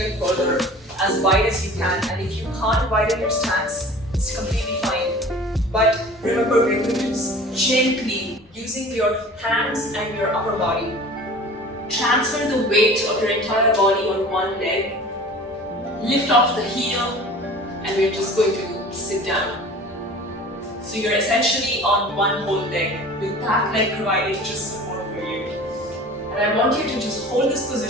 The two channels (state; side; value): normal; both; correlation 0.42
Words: further, as wide as you can. And if you can't widen your stance, it's completely fine. But remember, we're going to gently, using your hands and your upper body, transfer the weight of your entire body on one leg, lift off the heel, and we're just going to sit down. So you're essentially on one whole leg, with that leg providing just support for you. And I want you to just hold this